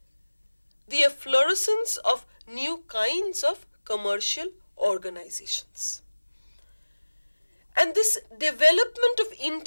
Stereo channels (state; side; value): inverted; both; correlation -1.00